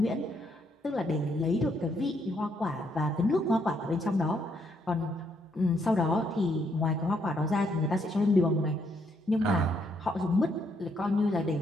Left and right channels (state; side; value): normal; both; correlation 0.73